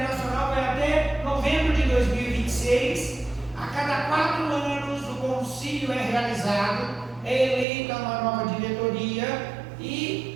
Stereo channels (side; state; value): left; drops out; at 7.7 s